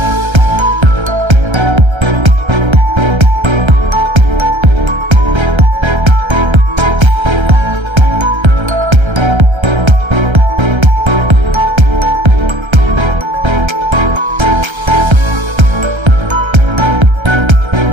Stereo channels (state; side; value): late; left; 1.3 ms